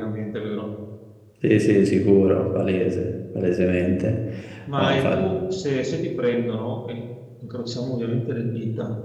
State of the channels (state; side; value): identical; both; correlation 1.00